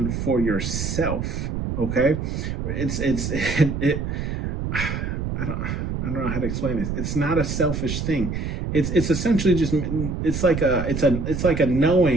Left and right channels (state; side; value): noise; right; rumble, 3 dB below the sound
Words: for yourself, okay? I don't know how to explain this. It's not a selfish thing. It's essentially just it's like a